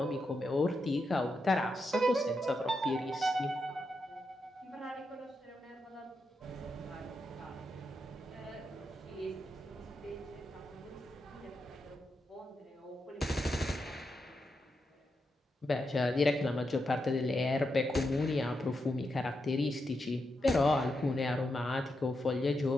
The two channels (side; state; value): both; normal; correlation 0.85